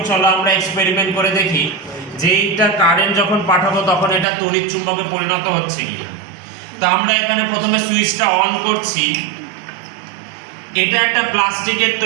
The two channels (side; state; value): left; drops out; at 4.2 s